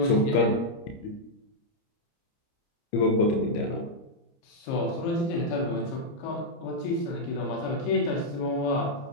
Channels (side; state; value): right; late; 30 ms